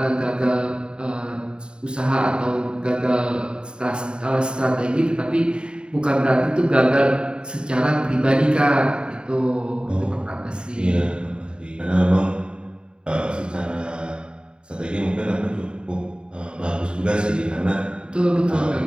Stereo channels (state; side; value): late; left; 0.050 ms